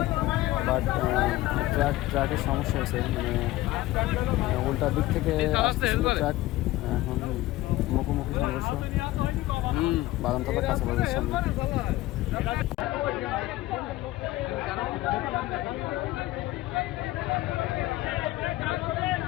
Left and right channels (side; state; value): right; quieter; 17.1 dB